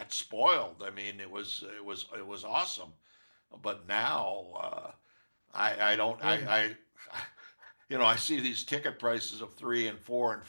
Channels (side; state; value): both; inverted; correlation -1.00